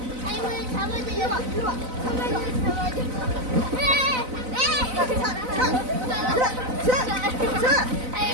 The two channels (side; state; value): left; late; 4.0 ms